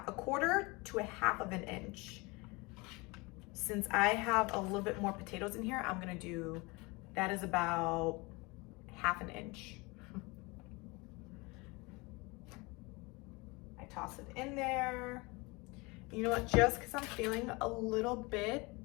a quarter to a half of an inch. Since I have a little bit more potatoes in here, I'm gonna do, that is about half an inch. I toss it in there. You know what, just because I'm feeling a little bit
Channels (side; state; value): right; quieter; 25.8 dB